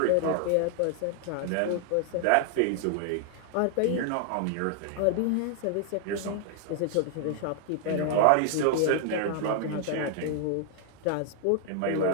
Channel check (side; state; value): both; different; correlation 0.00